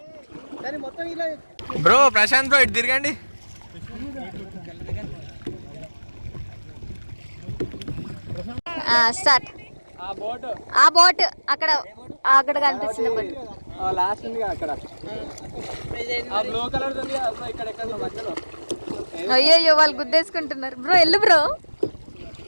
బ్రో ప్రశాంత్ బ్రో, ఇటు తిరగండి. స్టార్ట్. ఆ బోట్ అక్కడ అక్కడ కనిపిస్తుంది బోట్. అయ్యో వాళ్ళు గుద్దేసుకుంటున్నారు. బ్రో వెళ్ళు బ్రో.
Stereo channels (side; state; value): both; inverted; correlation -1.00